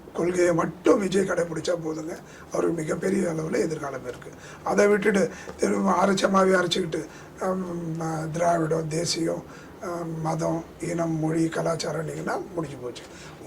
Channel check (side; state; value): both; identical; correlation 1.00